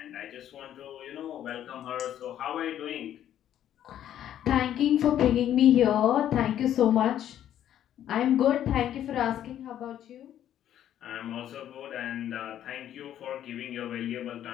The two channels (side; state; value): right; quieter; 11.0 dB